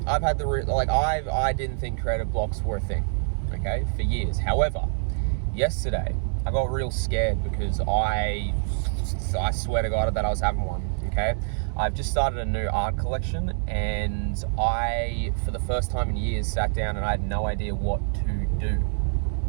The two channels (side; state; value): left; silent; digital silence